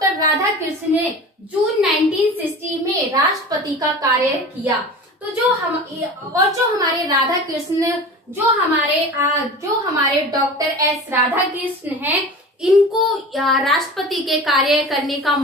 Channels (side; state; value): both; normal; correlation 0.35